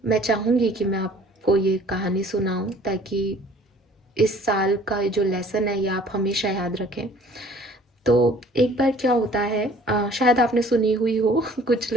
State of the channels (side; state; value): both; normal; correlation 0.53